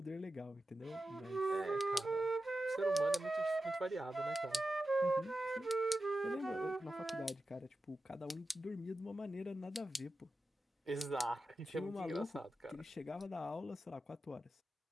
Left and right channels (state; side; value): normal; both; correlation 0.92